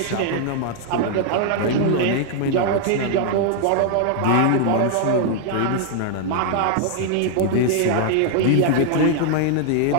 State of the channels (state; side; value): different; both; correlation 0.00